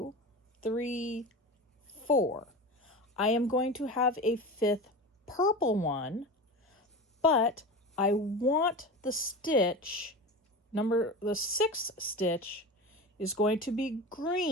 3, 4. I am going to have a 5th purple one, but I want the stitch, the 6th stitch is going to be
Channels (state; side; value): normal; both; correlation 0.28